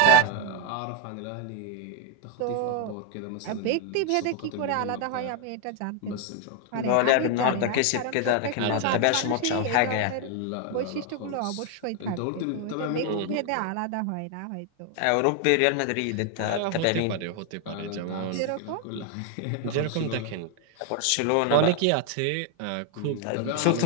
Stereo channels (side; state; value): both; different; correlation 0.01